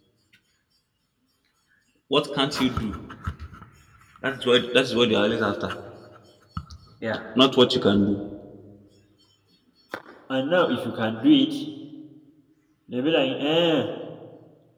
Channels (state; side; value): identical; both; correlation 1.00